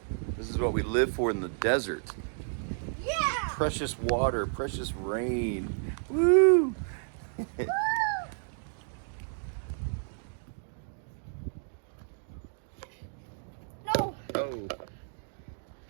This is what we live for in the desert. Yeah! Precious water, precious rain. Woo! No! Oh.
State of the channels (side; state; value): left; silent; 57 dB below the other